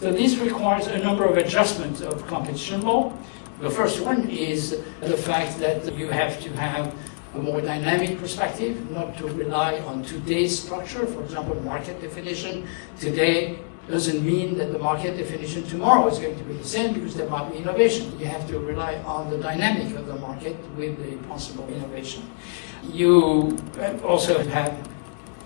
this requires a number of adjustments of competition law. The first one is the fact that you have to have a more dynamic perspective, not to rely on today's structure. For example, market definition today doesn't mean that the market definition tomorrow is going to be the same, because there might be innovation. You have to rely on the dynamic of the market with the possible innovation. You also have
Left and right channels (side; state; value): right; silent; digital silence